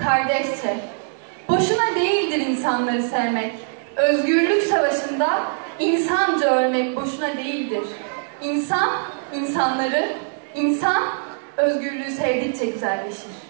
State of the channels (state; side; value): silent; left; digital silence